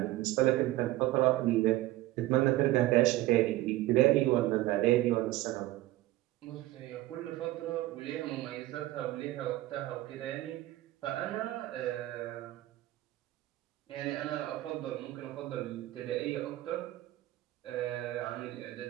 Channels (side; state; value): left; quieter; 16.7 dB